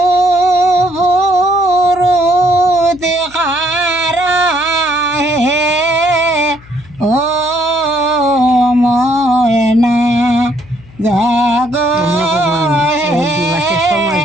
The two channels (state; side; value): noise; left; hum, 24 dB below the sound